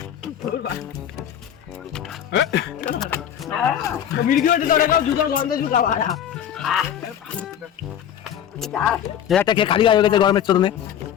মির্গি ওটা ধরে গাও জুতার গন্ধে জুকা বাড়া একটা খেয়ে খালি হয়ে গেছে গরমের চরণে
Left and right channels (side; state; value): right; quieter; 9.7 dB